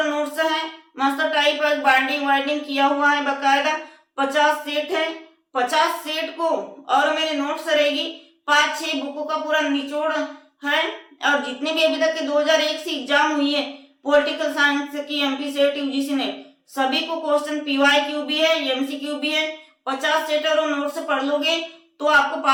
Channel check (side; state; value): both; identical; correlation 1.00